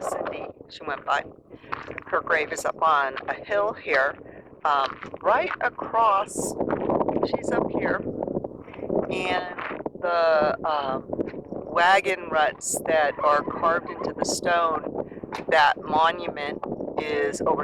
she went by. Her grave is up on a hill here, right across. She's up here, and the wagon ruts that are carved into the stone, that monument is over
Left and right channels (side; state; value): both; identical; correlation 1.00